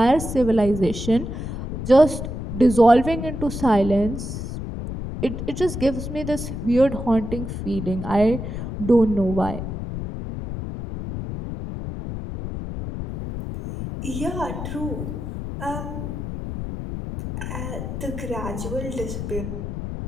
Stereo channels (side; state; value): left; noise; rumble, 6 dB below the sound